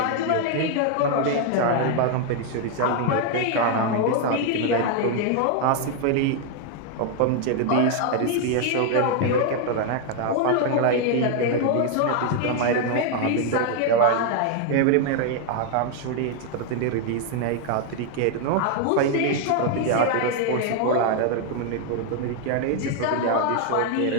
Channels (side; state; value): both; different; correlation 0.00